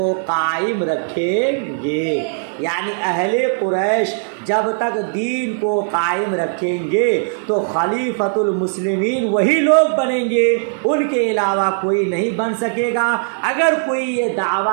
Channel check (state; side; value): silent; left; digital silence